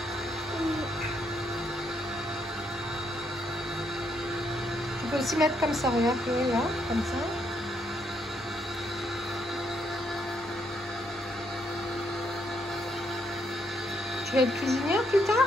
Tu peux aussi mettre comme ça, regarde, là, comme ça. Tu vas être cuisinière plus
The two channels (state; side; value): normal; both; correlation 0.75